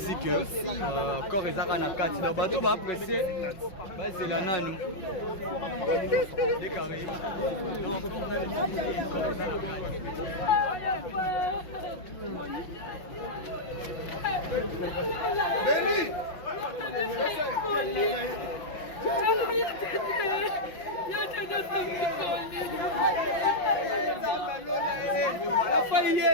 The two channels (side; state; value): right; late; 5.9 ms